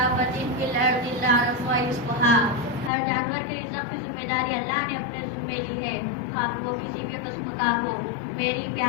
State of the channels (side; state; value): right; drops out; at 2.9 s